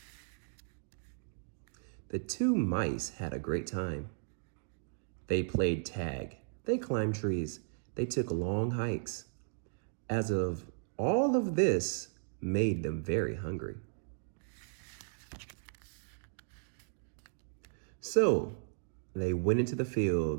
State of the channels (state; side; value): silent; left; digital silence